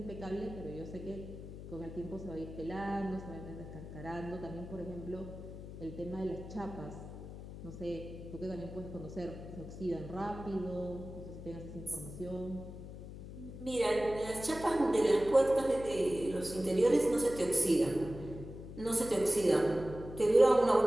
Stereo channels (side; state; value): left; noise; hum, 12 dB below the sound